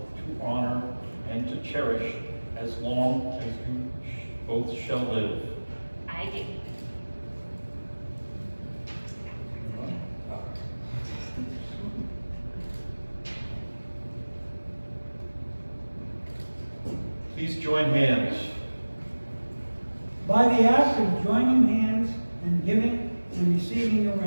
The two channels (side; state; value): both; inverted; correlation -1.00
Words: to honor, and to cherish as long as you both shall live? I do. Please join hands. By the act of joining hands and giving and receiving a